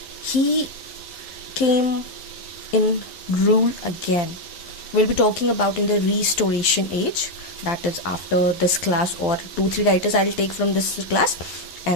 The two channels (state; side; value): late; right; 12 ms